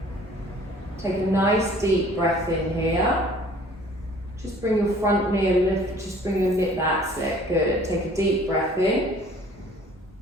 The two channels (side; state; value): both; normal; correlation 0.53